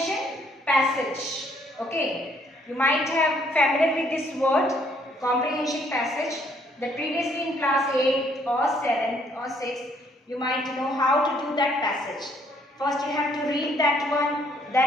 passage. Okay. You might have familiar with this word, comprehension passage, that previously in class 8 or 7 or 6 you might know how to do that passage. First you have to read that one,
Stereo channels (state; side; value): normal; both; correlation 0.66